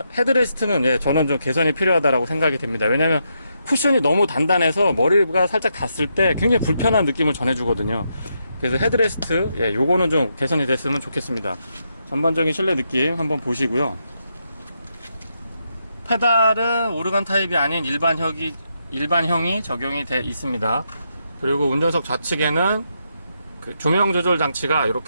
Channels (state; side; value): inverted; both; correlation -0.81